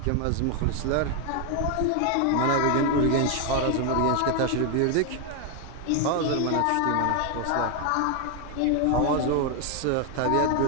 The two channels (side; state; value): both; different; correlation 0.00